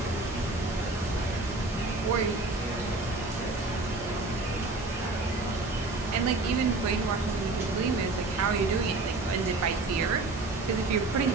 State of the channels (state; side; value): quieter; left; 3.2 dB